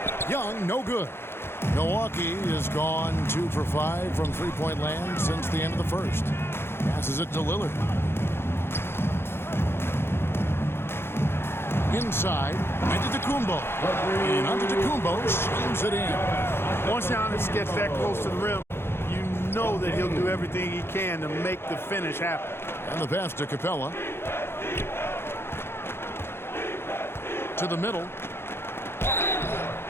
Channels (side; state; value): right; late; 0.11 ms